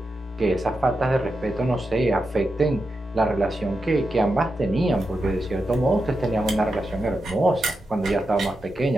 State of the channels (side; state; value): both; normal; correlation 0.88